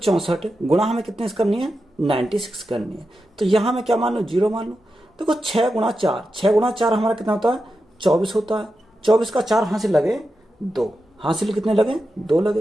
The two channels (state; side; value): normal; both; correlation 0.89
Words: गुणा हमें कितने करनी है? 96 करनी है। तो यहां मैं क्या मान लूं? 0 मान लूं। देखो 6 गुणा 4, 6 गुणा 4 हमारा कितना होता है? 24 होता है। 24 का 4 हासिल लगे 2, हासिल कितने लगे? 2